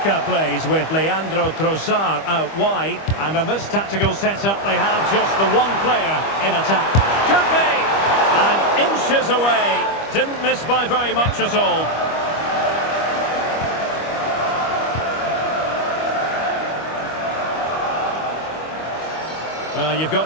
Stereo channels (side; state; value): right; late; 25 ms